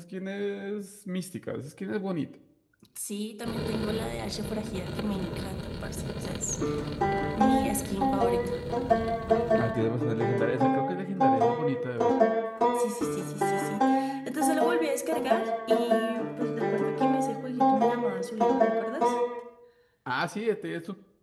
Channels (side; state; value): both; identical; correlation 1.00